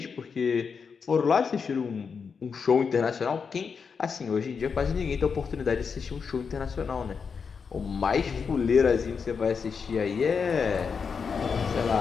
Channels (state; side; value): quieter; right; 5.8 dB